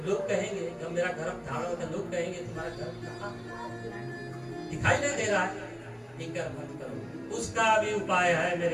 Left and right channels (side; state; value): both; identical; correlation 1.00